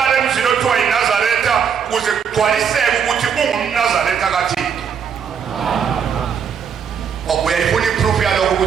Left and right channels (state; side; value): quieter; left; 7.2 dB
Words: emzini othiwa yiNazaretha ligcwaliseke ukuthi ungumNazaretha kaThixo. Uyayifuna iproof yalokho